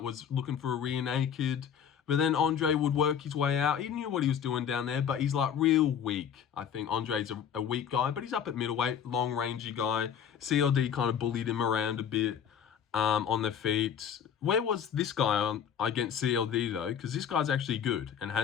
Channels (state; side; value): quieter; right; 8.3 dB